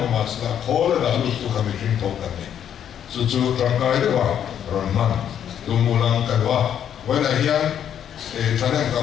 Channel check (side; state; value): right; quieter; 9.4 dB